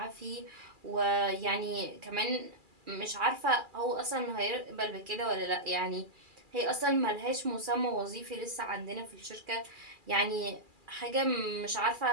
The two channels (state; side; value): late; left; 2.4 ms